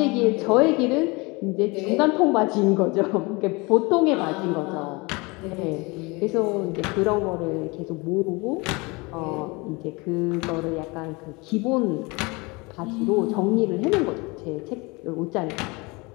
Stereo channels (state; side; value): quieter; right; 26.3 dB